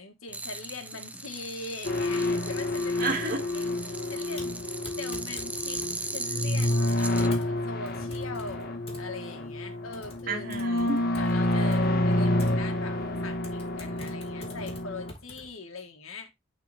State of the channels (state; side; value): normal; both; correlation 0.53